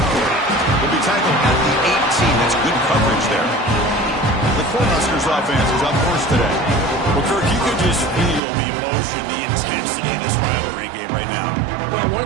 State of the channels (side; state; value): left; drops out; at 8.4 s